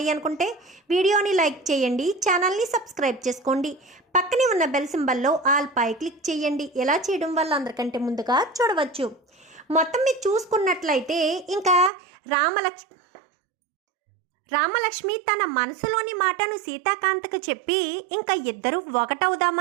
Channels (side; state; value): left; drops out; at 11.9 s